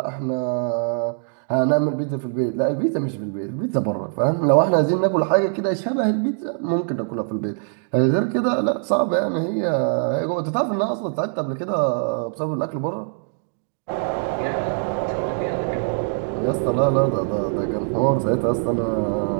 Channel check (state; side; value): silent; left; digital silence